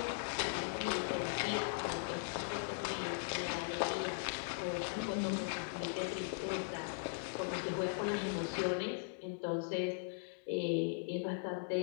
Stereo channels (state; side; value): silent; right; digital silence